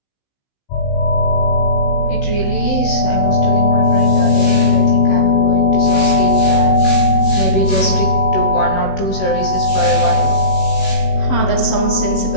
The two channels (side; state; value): right; late; 16 ms